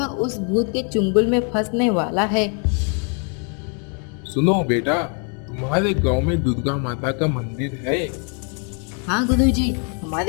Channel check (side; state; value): right; quieter; 39.7 dB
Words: उस भूत के चुंगल में फंसने वाला है। सुनो बेटा, तुम्हारे गांव में दुर्गा माता का मंदिर है। हाँ गुरुजी,